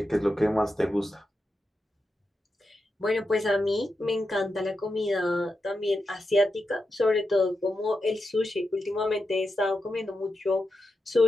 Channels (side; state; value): both; normal; correlation 0.88